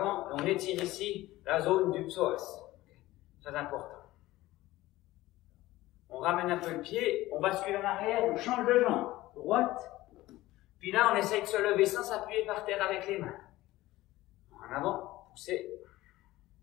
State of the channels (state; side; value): quieter; right; 17.3 dB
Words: et on étire ici la zone du psoas. Très important. On ramène un peu le pied, on bascule en arrière, on change de jambe. Droite. Puis là, on essaye de se lever sans s'appuyer par terre avec les mains. En avant, pousser.